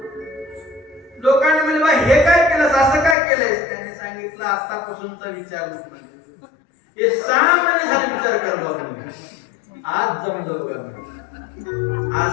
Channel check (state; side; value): drops out; right; at 3.2 s